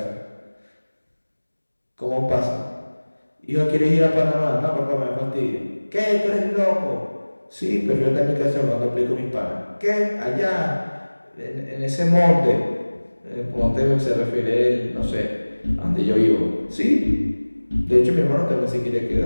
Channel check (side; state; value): both; inverted; correlation -1.00